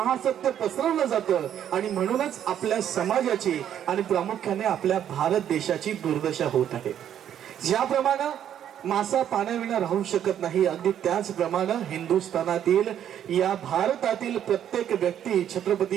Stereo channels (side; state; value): left; quieter; 10.0 dB